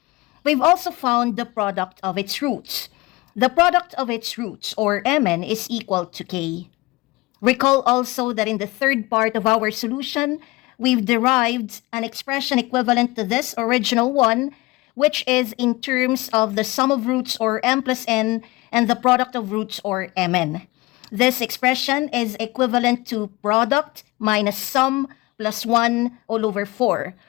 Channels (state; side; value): quieter; right; 21.5 dB